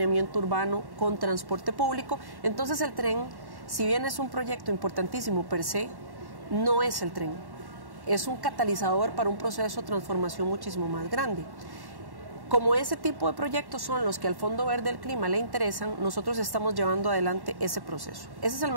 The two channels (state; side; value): late; left; 1.1 ms